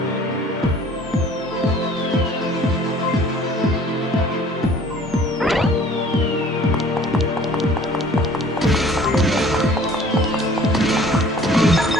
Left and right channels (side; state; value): both; normal; correlation 0.51